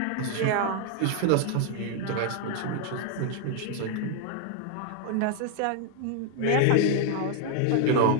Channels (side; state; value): both; different; correlation 0.00